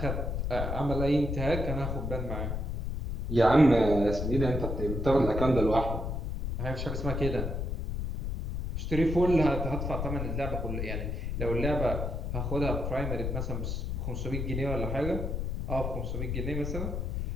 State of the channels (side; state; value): left; noise; rumble, 2 dB below the sound